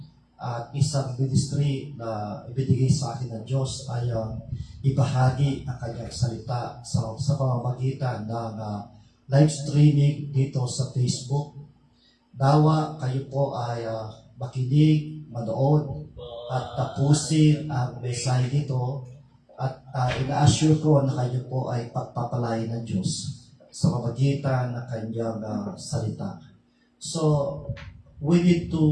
at isang ministry na ibinigay sa akin ng Diyos ay ibahagi ang kanyang salita sa pamamagitan ng live streaming dito sa Facebook. Nawa kayo po ay makinig, manood, at tapusin ang mensahe dito, at ina-assure ko na kayo po ay pagpapalain ng Diyos sa pamamagitan ng kanyang salita. So, we need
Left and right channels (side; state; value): both; identical; correlation 1.00